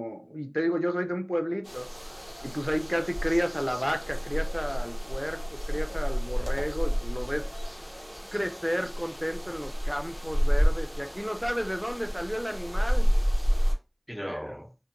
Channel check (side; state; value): both; identical; correlation 1.00